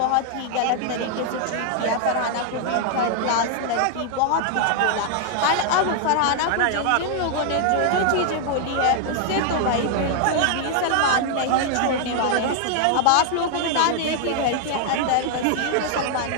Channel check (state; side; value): different; both; correlation 0.00